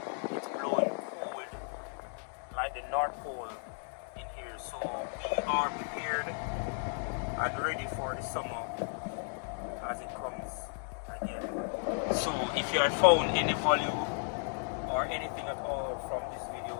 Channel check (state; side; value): silent; right; 55 dB below the other